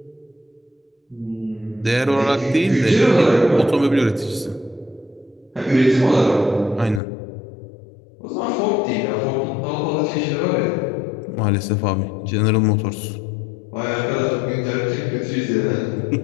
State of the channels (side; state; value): right; drops out; at 7.0 s